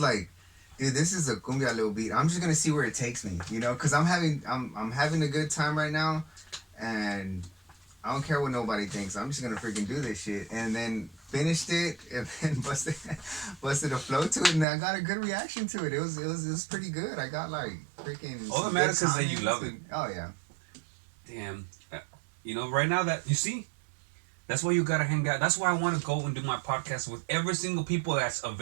dude, this is a cumbia little beat. I'm just gonna see where it takes me, because I'm having a good time right now, and I don't care what nobody thinks. I'm just gonna freaking do this shit. And then finished it, and then busted a flow to it, and I got a good reaction to it. It was pretty good. I got like freaking. All that some matters good is that you comments love it. and- Oh yeah. Damn. Right now that you see, that's why you gotta hang out. That's why I want to go and do my podcast with every single people that's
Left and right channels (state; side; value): drops out; left; at 14.7 s